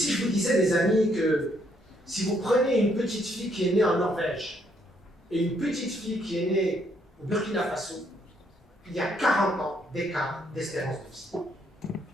je vous disais, mes amis, que si vous prenez une petite fille qui est née en Norvège et une petite fille qui est née au Burkina Faso, il y a 40 ans d'écart d'espérance de vie.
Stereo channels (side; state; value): both; normal; correlation 0.71